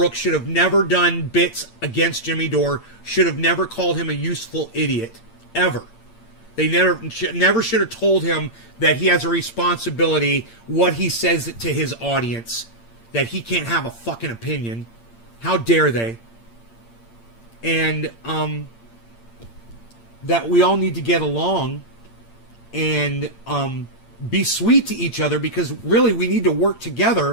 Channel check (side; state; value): right; late; 8.7 ms